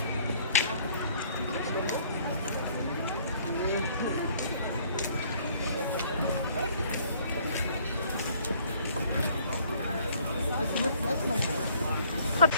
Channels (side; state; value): both; inverted; correlation -0.60